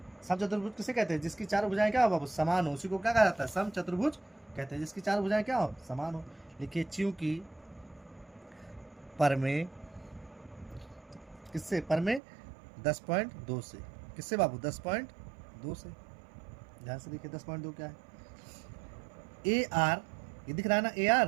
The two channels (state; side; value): drops out; left; at 12.2 s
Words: सम चतुर्भुज किसे कहते हैं, जिसकी चारों भुजाएं क्या हो बाबू, समान हो, उसी को क्या कहा जाता है, सम चतुर्भुज कहते हैं। जिसकी चारों भुजाएं क्या हो, समान हो। लिखिए चूंकि पर में किससे, पर में 10.2 से, किससे बाबू? 10.2 से। ध्यान से देखिए 10.2 क्या है? ए आर, ये दिख रहा है ना ए